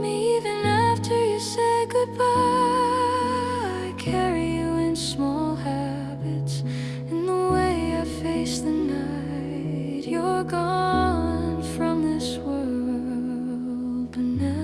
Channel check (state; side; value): identical; both; correlation 1.00